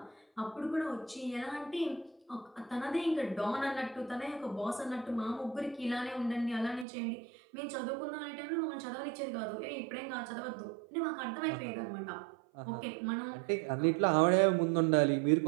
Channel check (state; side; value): drops out; left; at 6.9 s